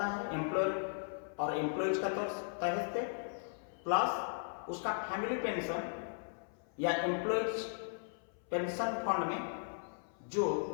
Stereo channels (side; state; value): right; silent; 53 dB below the other